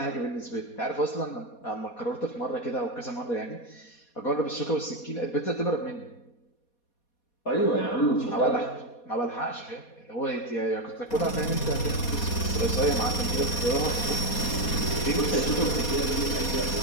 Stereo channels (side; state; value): right; late; 4.2 ms